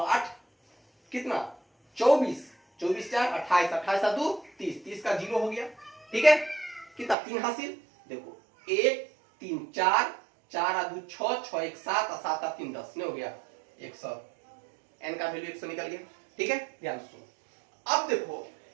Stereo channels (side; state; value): left; drops out; at 7.2 s